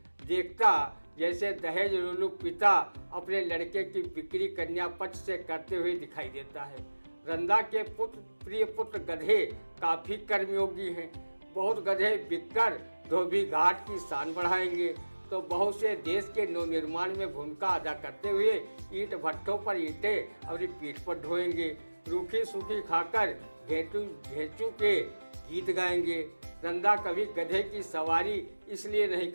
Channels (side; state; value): both; inverted; correlation -1.00